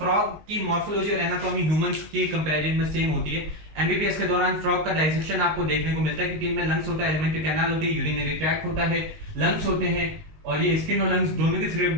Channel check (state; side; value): late; left; 19 ms